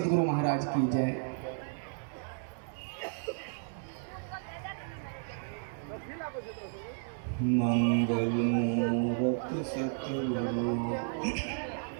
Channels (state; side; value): silent; left; digital silence